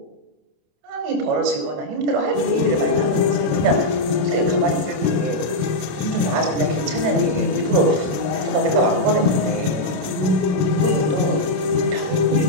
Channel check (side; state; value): left; late; 27 ms